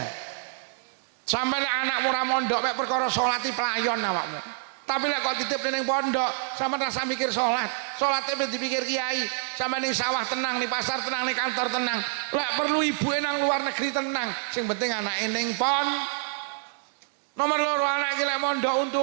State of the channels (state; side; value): silent; left; digital silence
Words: Sampai nek anakmu ora mondok mek perkara salati pelayon awakmu. Tapi lek kok titip ning pondok, sampean rasa mikir salat. Salate ben dipikir kiai. Sampai ning sawah tenang, ning pasar tenang, ning kantor tenang. Lek perlu ibuke nang luar negeri tenang. Sing penting anake ning pon. Nomor 2 anak iki lek mondok